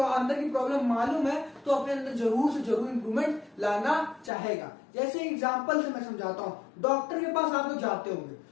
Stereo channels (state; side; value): drops out; right; at 4.3 s